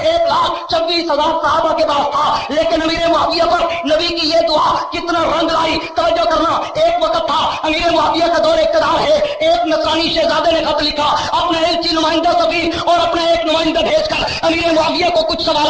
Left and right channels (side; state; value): both; identical; correlation 1.00